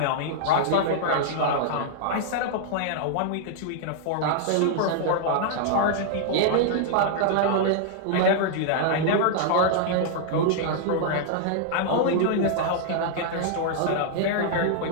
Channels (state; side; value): different; both; correlation -0.01